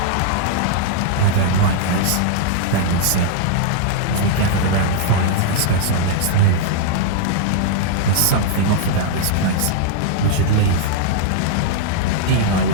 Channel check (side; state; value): both; different; correlation -0.01